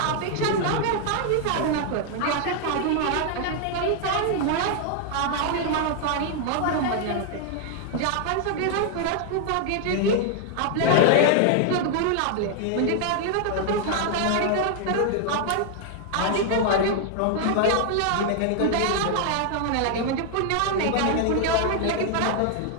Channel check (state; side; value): different; both; correlation 0.00